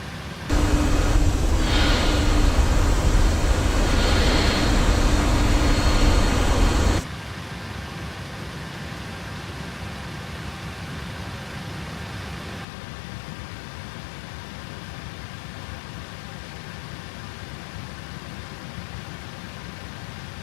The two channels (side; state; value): right; drops out; at 12.7 s